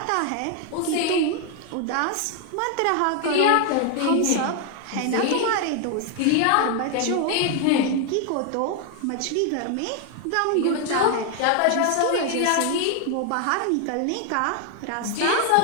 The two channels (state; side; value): different; both; correlation 0.00